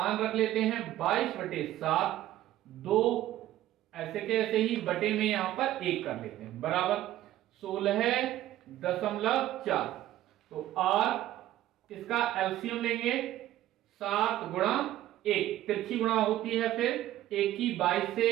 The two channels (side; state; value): left; quieter; 13.8 dB